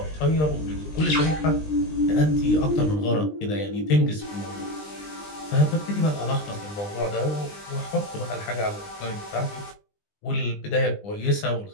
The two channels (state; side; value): late; right; 20 ms